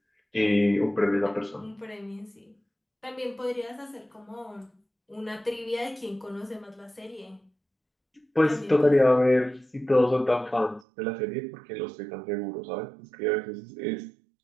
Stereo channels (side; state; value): left; drops out; at 10.9 s